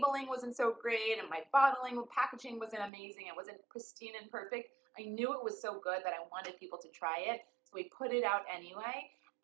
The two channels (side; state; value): left; drops out; at 2.9 s